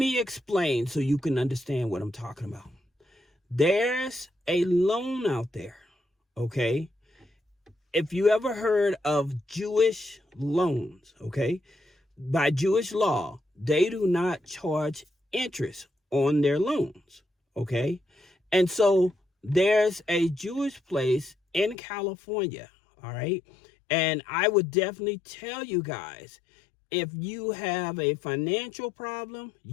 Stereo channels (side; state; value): right; drops out; at 21.8 s